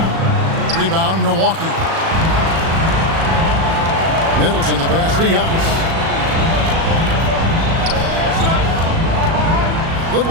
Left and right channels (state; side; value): late; left; 37 ms